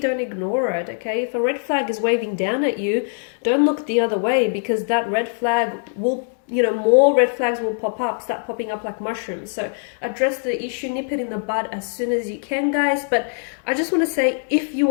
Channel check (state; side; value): silent; right; digital silence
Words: ignore it. Okay, if a red flag is waving down at you, don't look the other way, because that red flag will, you know, more red flags will start popping up like mushrooms. So address the issue, nip it in the bud as soon as you can, guys. But I just want to say, if you